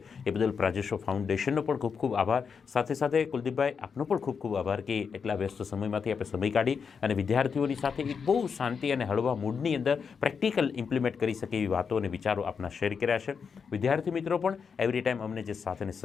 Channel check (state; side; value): quieter; right; 6.1 dB